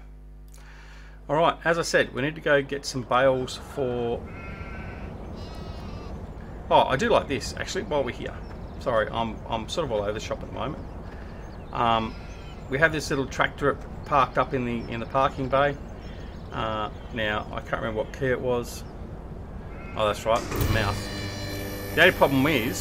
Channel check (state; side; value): identical; both; correlation 1.00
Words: all right, as I said, we need to go get some bales for... Oh, I do like this actually. While we're here, sorry, I'm sort of all over the shop at the moment. We have this little tractor parked up in the parking bay. Now I can't remember what key it was. Oh, that's right, it's a mouse. The only problem